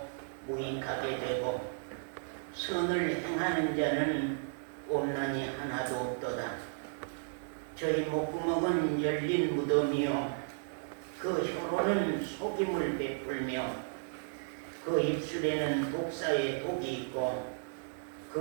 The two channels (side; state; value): left; silent; digital silence